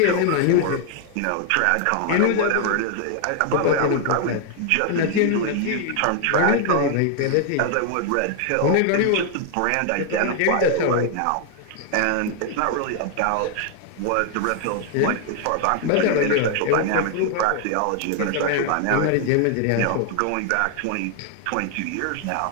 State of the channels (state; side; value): different; both; correlation 0.00